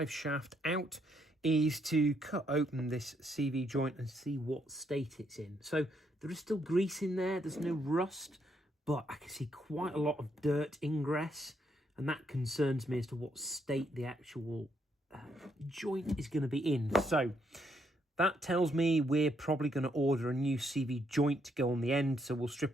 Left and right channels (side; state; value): both; normal; correlation 0.75